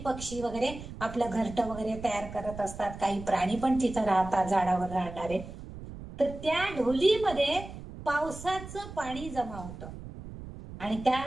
वगैरे आपलं घरटं वगैरे तयार करत असतात. काही प्राणी पण तिथं राहतात, झाडावर राहणारे. तर त्या ढोलीमध्ये पावसाचं पाणी जमा होतं आणि त्या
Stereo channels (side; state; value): right; noise; rumble, 12 dB below the sound